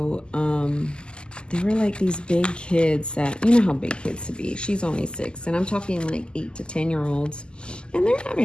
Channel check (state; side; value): late; right; 0.048 ms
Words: there were like these big kids that, you know how big kids to be. She's only 6 and I'm talking like 8 to 10-year-olds, and they're